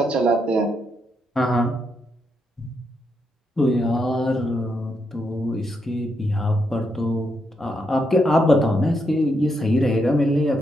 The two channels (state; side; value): normal; both; correlation 0.80